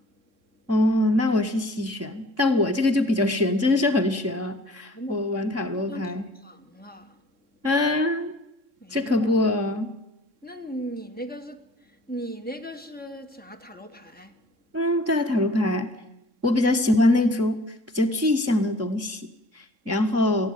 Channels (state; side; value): late; left; 3.6 ms